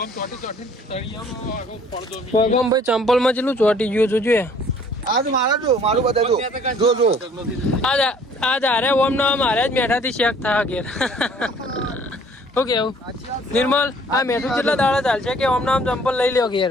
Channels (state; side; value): normal; both; correlation 0.56